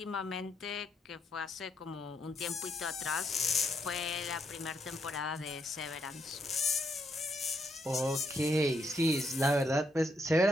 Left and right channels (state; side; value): normal; both; correlation 0.76